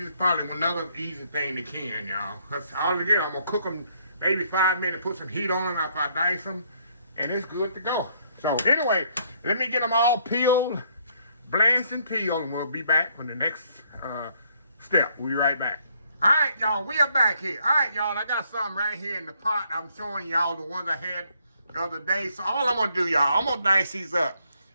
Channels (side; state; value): both; inverted; correlation -0.68